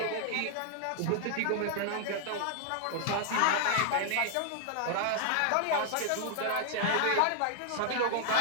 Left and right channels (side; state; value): both; different; correlation 0.00